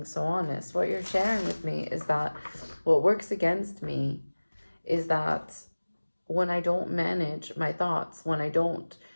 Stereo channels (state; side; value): inverted; both; correlation -1.00